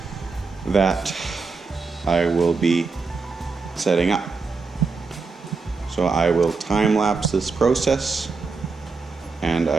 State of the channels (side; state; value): left; quieter; 4.5 dB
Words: that I will be setting up. So I will time lapse this process and